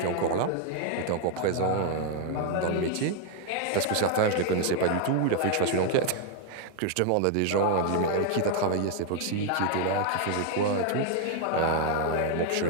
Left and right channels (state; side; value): different; both; correlation 0.00